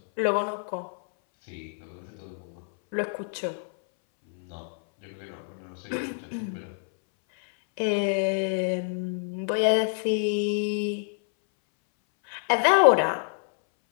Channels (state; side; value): silent; right; 59 dB below the other